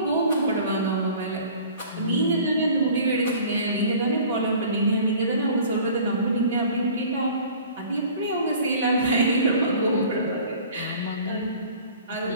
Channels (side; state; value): both; inverted; correlation -0.47